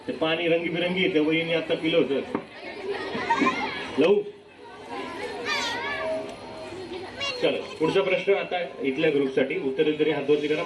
ते पाणी रंगीबिरंगी येते. वहिनी आता पिलं होतं. लवू. चला पुढचा प्रश्न आता इथल्या ग्रुपसाठी. उत्तर तरी हातवरती करा.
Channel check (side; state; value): both; identical; correlation 1.00